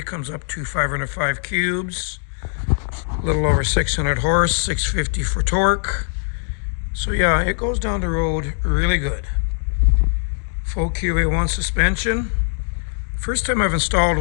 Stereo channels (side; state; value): right; silent; digital silence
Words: comes up to 505 cubes. A little over 600 horse, 650 for torque. So yeah, it goes down the road really good. Full QA1 suspension. First time I've installed